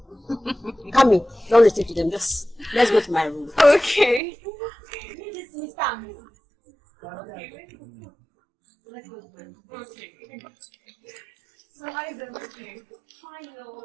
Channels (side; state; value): left; drops out; at 4.2 s